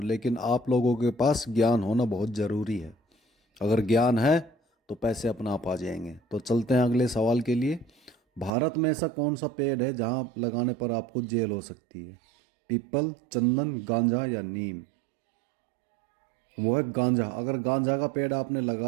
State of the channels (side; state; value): left; drops out; at 8.5 s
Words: लेकिन आप लोगों के पास ज्ञान होना बहुत ज़रूरी है। अगर ज्ञान है तो पैसे अपने आप आ जाएंगे। तो चलते हैं अगले सवाल के लिए। भारत में ऐसा कौन सा पेड़ है जहाँ लगाने पर आपको जेल हो सकती है? पीपल, चंदन, गांजा या नीम? वो है गांजा। अगर गांजा का पेड़ आपने